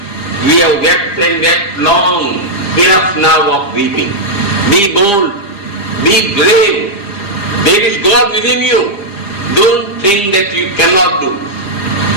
we have wept and wept long, enough now of weeping. Be bold, be brave. There is God within you. Don't think that you cannot do.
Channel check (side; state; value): right; late; 4.9 ms